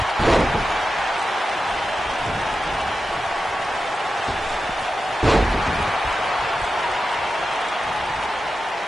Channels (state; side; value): normal; both; correlation 0.91